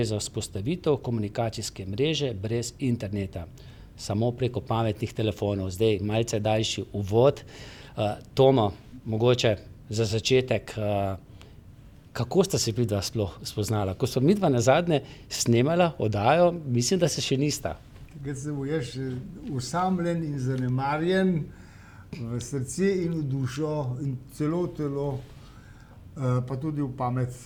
za vzpostavitev komunikacijske mreže brez interneta, samo preko pametnih telefonov. Zdaj malce daljši uvod. Tomo, mogoče za začetek, kako sta se midva sploh spoznala? Ko smo midva nazadnje snemala oddajo, mislim, da se še nista. Takrat sem bil jaz osamljen in zanemarjen, v srce in v dušo in celo v telo, pa tudi v pamet.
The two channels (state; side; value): identical; both; correlation 1.00